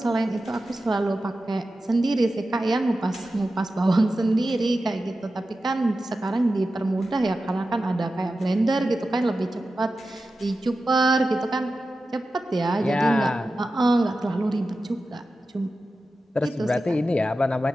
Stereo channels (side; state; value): both; normal; correlation 0.93